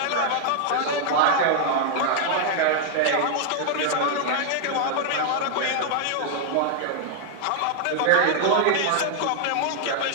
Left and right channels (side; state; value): both; different; correlation 0.00